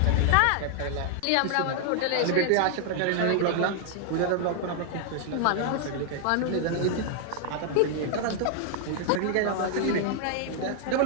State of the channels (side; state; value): both; different; correlation -0.01